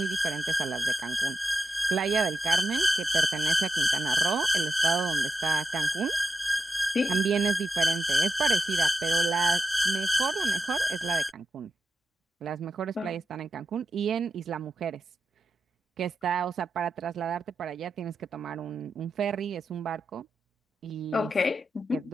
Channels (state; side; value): normal; both; correlation 0.89